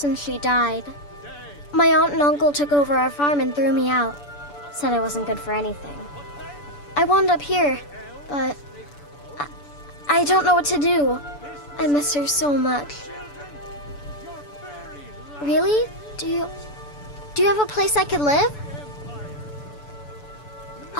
she died. My aunt and uncle took over our farm and threw me out. Said I wasn't good for anything. I wound up here, but I don't know what to do. I miss her so much. Really? Do you have a place I could live?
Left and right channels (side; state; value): right; late; 6.9 ms